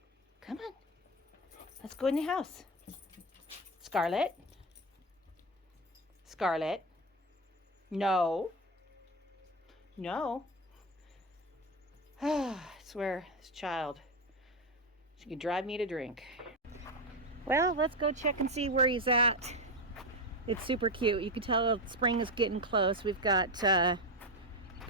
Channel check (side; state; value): both; normal; correlation 0.14